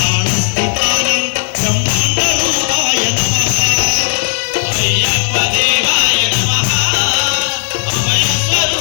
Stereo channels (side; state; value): right; silent; digital silence